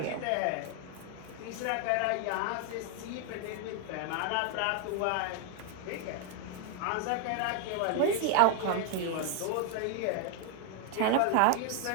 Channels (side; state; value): both; different; correlation 0.00